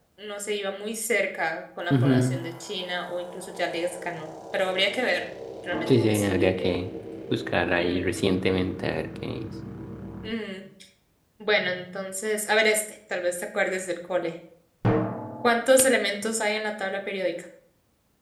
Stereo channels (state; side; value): identical; both; correlation 1.00